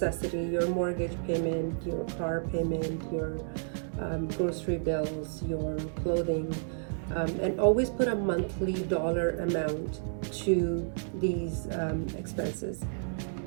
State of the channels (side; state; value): left; silent; digital silence